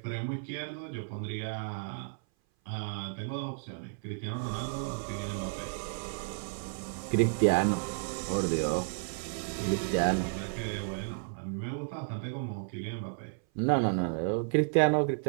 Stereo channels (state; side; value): silent; left; 56 dB below the other